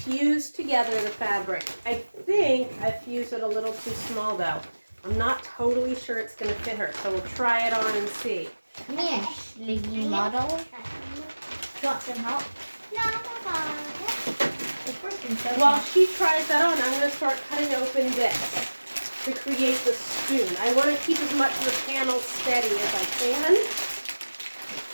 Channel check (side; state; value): both; inverted; correlation -1.00